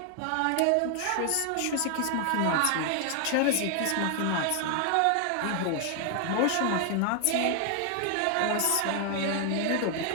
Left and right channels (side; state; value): both; different; correlation 0.00